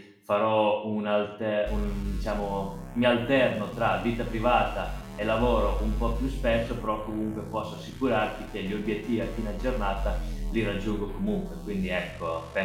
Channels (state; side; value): identical; both; correlation 1.00